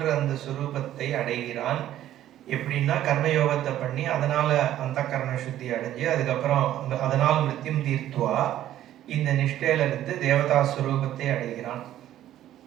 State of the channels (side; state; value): left; quieter; 12.6 dB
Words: அந்த சுரூபத்தை அடைகிறான். எப்படின்னா கர்மயோகத்தை பண்ணி அதனால அந்த கரண சுத்தி அடைஞ்சு அதுக்கப்புறம் அதனால் மிருத்யும் தீர்த்துவா இந்த நிஷ்டையில இருந்து தேவதா சுரூபத்தை அடைகிறான்.